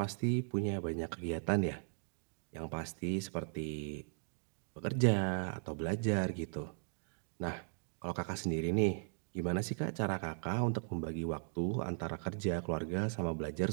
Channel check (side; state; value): left; silent; digital silence